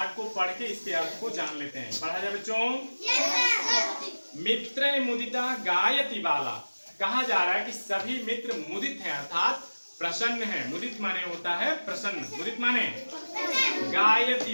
को पढ़ के इसके अर्थ को जान लेते हैं। पढ़ा जाए बच्चों। मित्र मुदिता गायति बाला, कहा जा रहा है कि सभी मित्र मुदित हैं अर्थात प्रसन्न है। मुदित माने होता है प्रसन्न, मुदित माने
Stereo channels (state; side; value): inverted; both; correlation -1.00